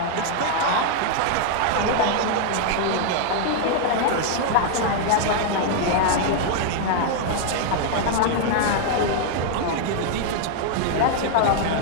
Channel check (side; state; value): both; different; correlation 0.00